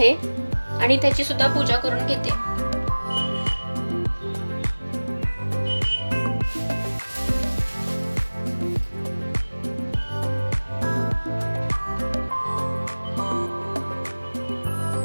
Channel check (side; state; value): both; inverted; correlation -1.00